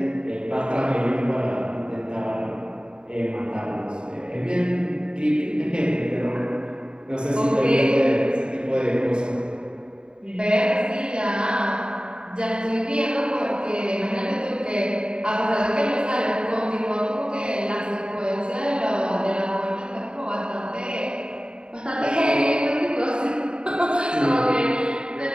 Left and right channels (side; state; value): left; late; 0.049 ms